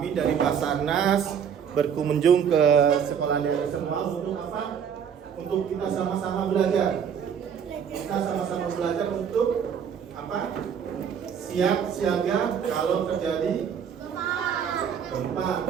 dari Basarnas berkunjung ke sekolah adik-adik semua untuk apa? Untuk kita sama-sama belajar. Kita sama-sama belajar untuk apa? Siap siaga kalau terjadi gempa,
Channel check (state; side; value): quieter; left; 7.7 dB